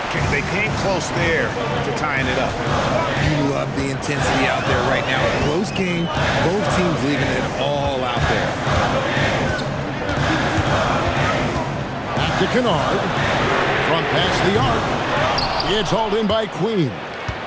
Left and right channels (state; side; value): identical; both; correlation 1.00